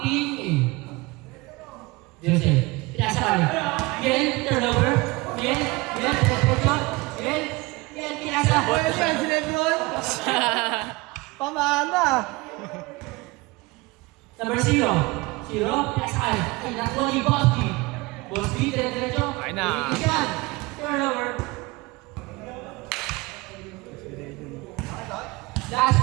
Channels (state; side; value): quieter; left; 23.2 dB